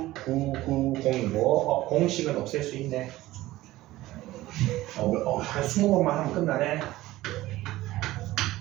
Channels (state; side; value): quieter; left; 16.8 dB